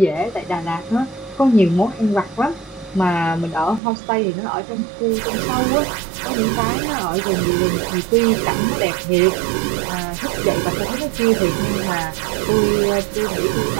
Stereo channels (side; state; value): left; drops out; at 3.8 s